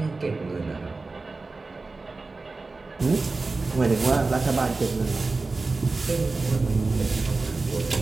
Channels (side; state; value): left; quieter; 3.7 dB